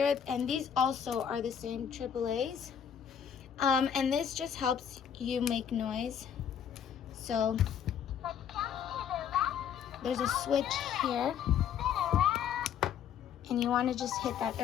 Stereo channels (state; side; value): quieter; right; 8.4 dB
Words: and these also are the same AAAs. And this just helps you make noise. So there's a switch here, and you want to just hit that